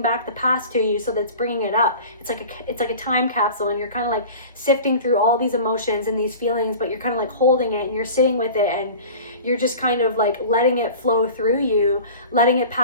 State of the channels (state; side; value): inverted; both; correlation -0.39